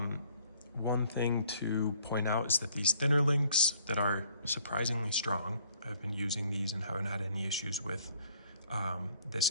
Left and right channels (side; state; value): both; inverted; correlation -0.60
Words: thing to point out is that these thinner links that are surprisingly strong, I've been using these and haven't had any issues with